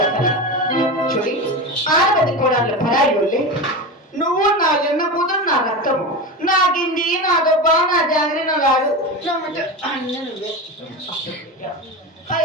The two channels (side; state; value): both; normal; correlation 0.23